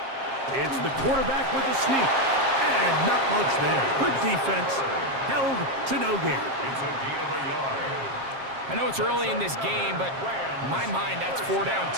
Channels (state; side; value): late; left; 7.5 ms